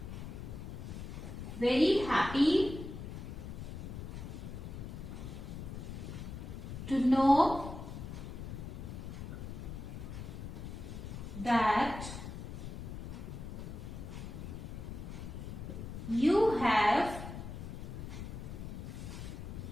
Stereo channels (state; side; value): noise; left; rumble, 8 dB below the sound